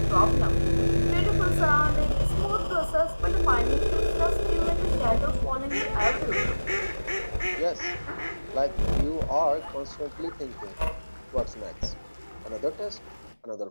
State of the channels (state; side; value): inverted; both; correlation -1.00